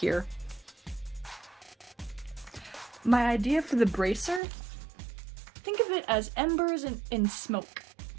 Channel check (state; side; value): drops out; left; at 4.4 s